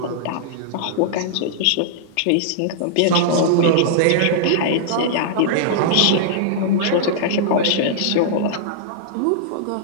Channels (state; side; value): different; both; correlation -0.02